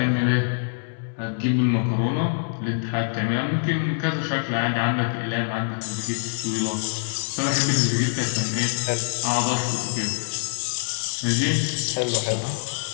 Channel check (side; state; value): right; silent; 62 dB below the other